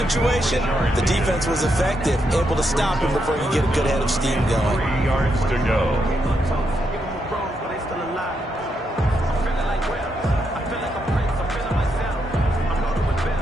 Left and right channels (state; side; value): normal; both; correlation 0.80